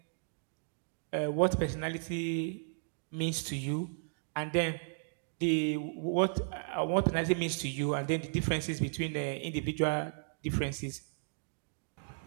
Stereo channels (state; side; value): silent; left; digital silence